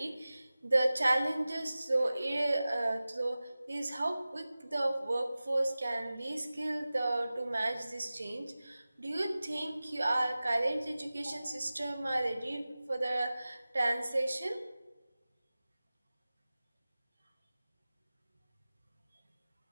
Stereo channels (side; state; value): both; inverted; correlation -0.97